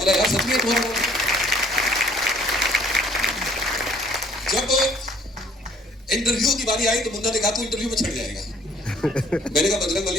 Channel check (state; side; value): normal; both; correlation 0.60